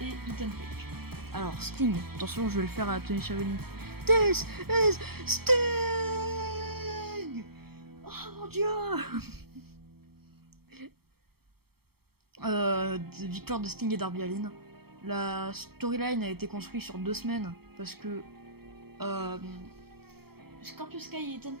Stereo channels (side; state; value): left; late; 0.96 ms